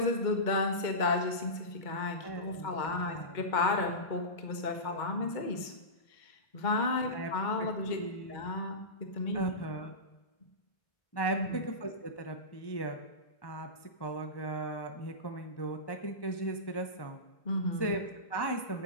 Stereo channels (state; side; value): late; right; 2.1 ms